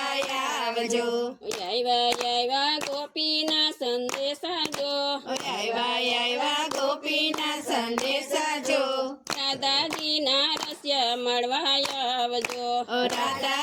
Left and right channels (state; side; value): identical; both; correlation 1.00